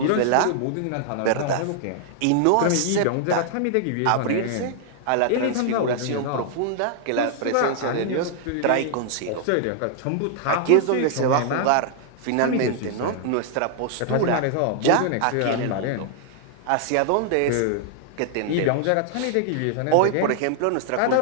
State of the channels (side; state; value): both; different; correlation -0.01